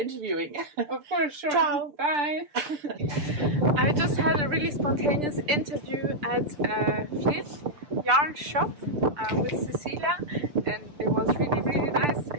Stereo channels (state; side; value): late; left; 6.8 ms